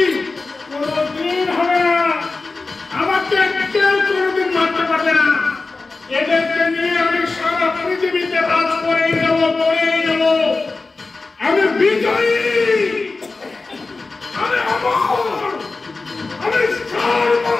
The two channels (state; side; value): quieter; right; 3.7 dB